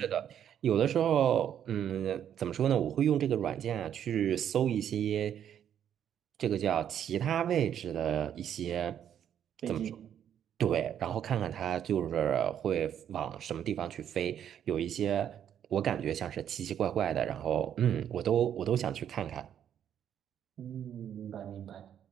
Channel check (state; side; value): quieter; left; 9.5 dB